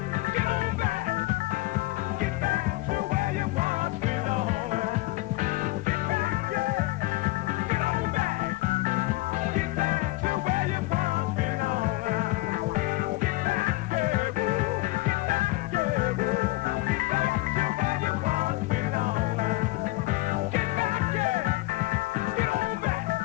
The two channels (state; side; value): quieter; right; 20.0 dB